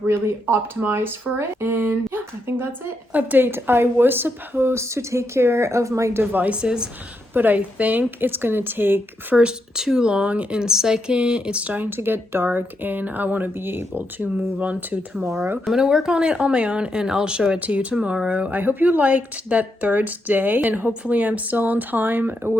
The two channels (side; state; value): both; normal; correlation 0.81